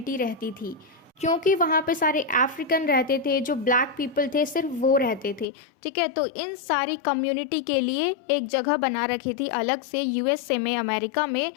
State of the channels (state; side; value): drops out; right; at 5.5 s